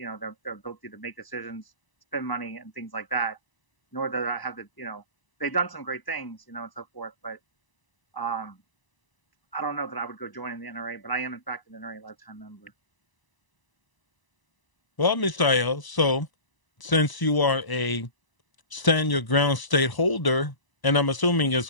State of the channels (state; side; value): late; right; 1.0 ms